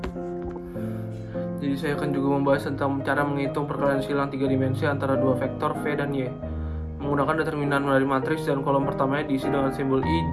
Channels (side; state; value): both; identical; correlation 1.00